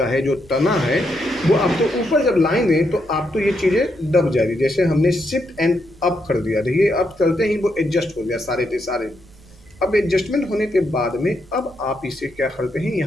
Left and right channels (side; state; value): right; noise; rumble, 25 dB below the sound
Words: है, जो तना है, वो आप तो ऊपर जब लाएंगे तो आप तो ये चीज़ें दब जाएगी। जैसे हमने शिफ्ट एंड अप कर दिया, देखिए अप करते ही वो एडजस्ट हो गया सारे के सारे। अब एडजस्टमेंट होने के बाद में अब आप इसे क्या करते हैं,